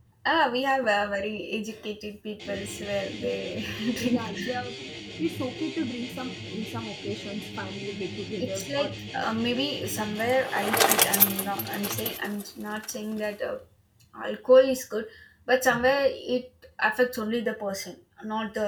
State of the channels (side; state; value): both; identical; correlation 1.00